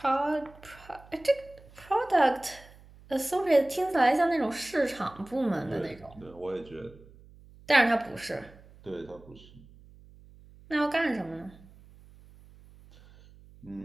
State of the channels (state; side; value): noise; right; hum, 23 dB below the sound